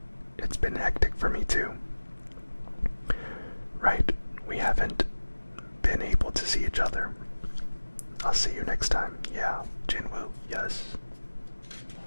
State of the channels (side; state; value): both; inverted; correlation -1.00